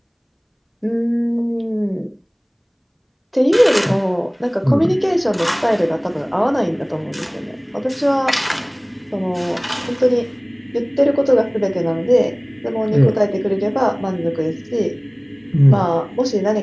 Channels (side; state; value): both; identical; correlation 1.00